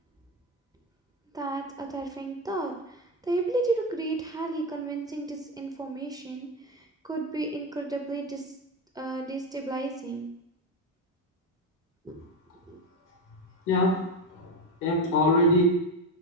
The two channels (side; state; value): both; normal; correlation 0.15